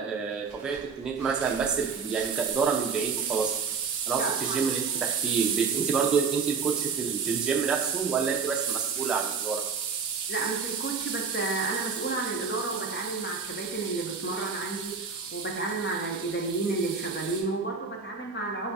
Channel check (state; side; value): quieter; left; 5.4 dB